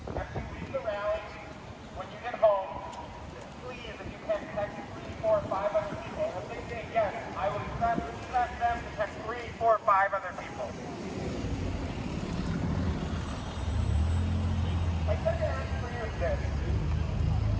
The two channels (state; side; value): identical; both; correlation 1.00